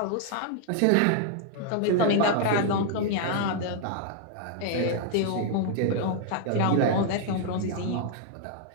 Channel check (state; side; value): different; both; correlation 0.00